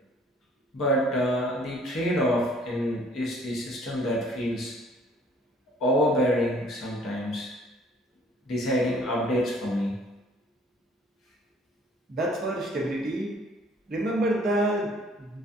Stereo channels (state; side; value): normal; both; correlation 0.57